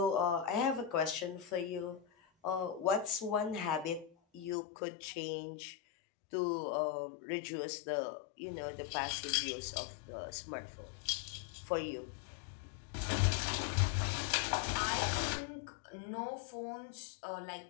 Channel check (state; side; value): drops out; right; at 4.5 s